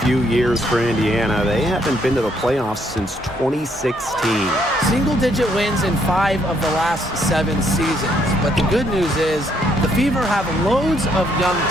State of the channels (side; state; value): both; normal; correlation 0.71